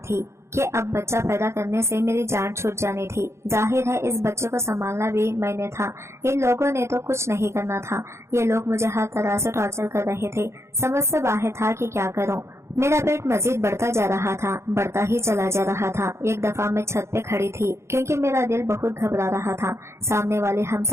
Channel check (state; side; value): late; left; 0.13 ms